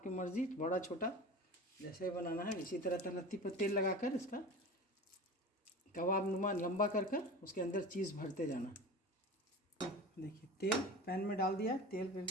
मर्ज़ी, बड़ा छोटा जैसे ही बनाना है। इसी तरह तलत्ती पर तेल लगाकर इसका कबाब नुमा लंबा कर कर उसके अंदर चीज़ भरते जाना। देखिए तेल पैन में डाल दिया, तेल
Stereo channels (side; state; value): both; normal; correlation 0.34